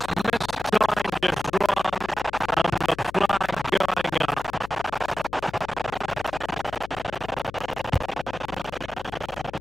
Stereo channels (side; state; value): left; noise; hum, 16 dB below the sound